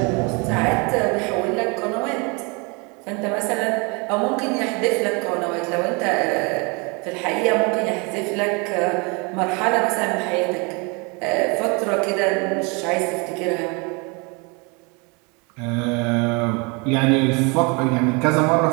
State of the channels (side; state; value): left; quieter; 30.3 dB